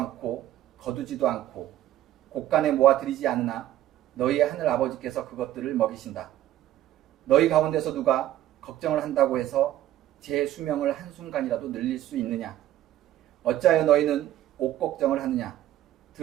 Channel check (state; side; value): quieter; left; 13.2 dB